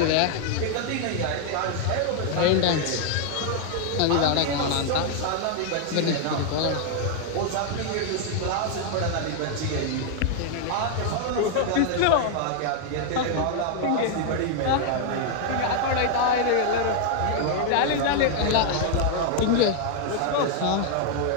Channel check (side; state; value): both; different; correlation 0.00